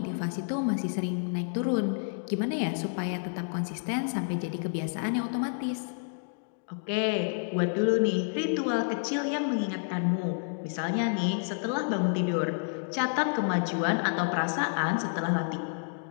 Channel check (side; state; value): right; silent; digital silence